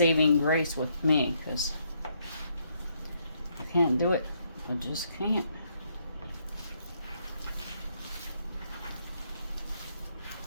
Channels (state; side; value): inverted; both; correlation -0.73